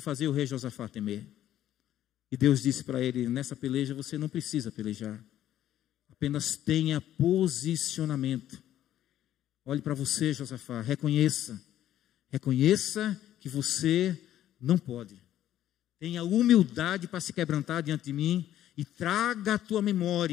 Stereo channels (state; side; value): quieter; right; 12.1 dB